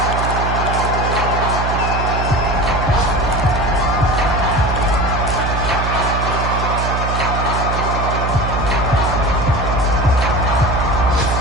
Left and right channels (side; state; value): right; noise; hum, 2 dB below the sound